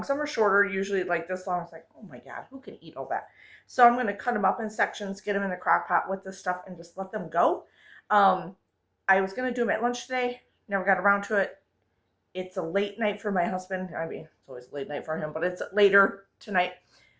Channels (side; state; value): both; identical; correlation 1.00